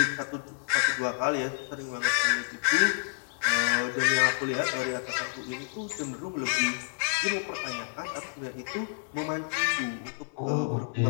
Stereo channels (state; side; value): silent; right; 58 dB below the other